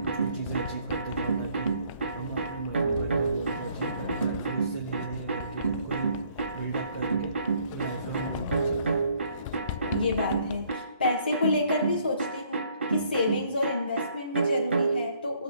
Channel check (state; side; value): inverted; both; correlation -0.64